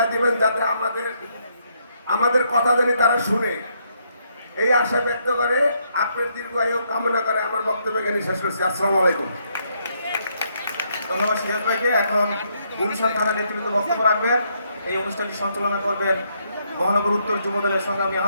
দিবেন যাতে আমাদের কথা জানি তারা শুনে, এই আশা ব্যক্ত করে আপনার দীর্ঘায়ু কামনা করে আমার বক্তব্য এখানে শেষ করছি। আসসালামু আলাইকুম। ধন্যবাদ সিরাজ ভাইকে। এখন গুলশান থানা নেতৃত্ব বক্তব্য রাখবেন। এই অনুষ্ঠানটি সঞ্চালনা করবেন মহানগর উত্তর যুব দলের সংগ্রামী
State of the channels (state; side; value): inverted; both; correlation -0.74